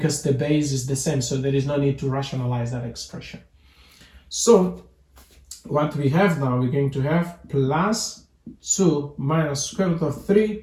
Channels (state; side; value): identical; both; correlation 1.00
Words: the base is the same, so there is no need to rationalize that expression. So what we have now, we're going to have plus 2 minus square root of